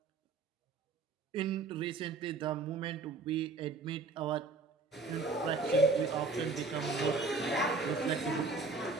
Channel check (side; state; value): left; quieter; 3.9 dB